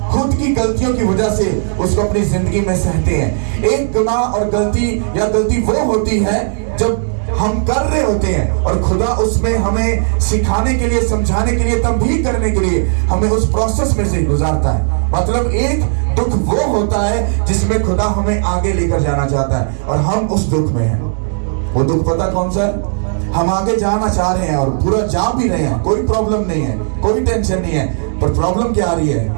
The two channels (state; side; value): silent; left; digital silence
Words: खुद की गलतियों की वजह से उसको अपनी जिंदगी में सहते हैं। एक गुनाह और गलती वो होती है जब हम कर रहे होते हैं और खुदा उसमें हमें सिखाने के लिए, समझाने के लिए, तंबीह करने के लिए हमें उस प्रोसेस में से गुजारता है। मतलब एक दुख वो होता है जिसमें खुदा हमें आगे लेकर जाना चाहता है और हम उस दुख में हैं। वो दुख पता कौन सा है? हम आगे जाना चाह रहे हैं और पूरा जा भी रहे हैं, कोई प्रॉब्लम नहीं है, कोई टेंशन नहीं है, पर प्रॉब्लम क्या आ रही है